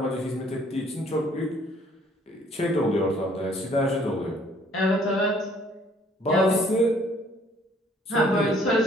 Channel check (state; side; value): normal; both; correlation 0.60